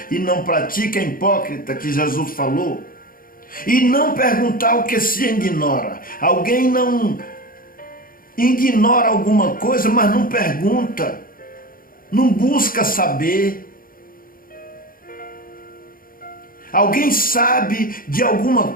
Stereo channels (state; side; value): late; right; 0.41 ms